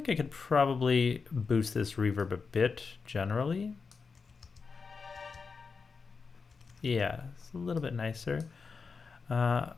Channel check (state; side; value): quieter; right; 5.0 dB